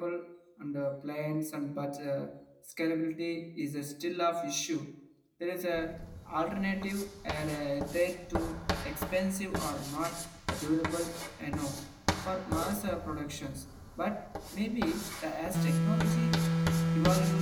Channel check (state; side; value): identical; both; correlation 1.00